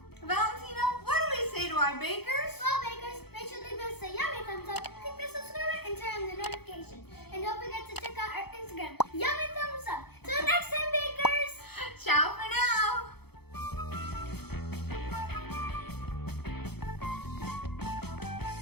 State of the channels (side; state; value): right; late; 0.97 ms